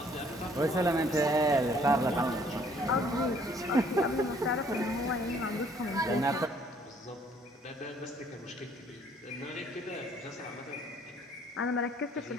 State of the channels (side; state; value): both; normal; correlation 0.61